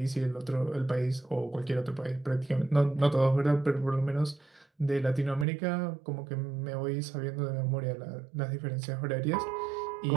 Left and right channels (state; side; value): drops out; left; at 5.5 s